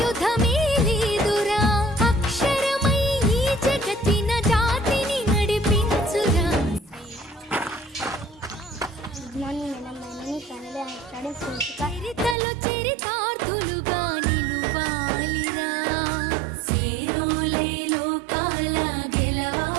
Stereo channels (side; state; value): left; drops out; at 12.4 s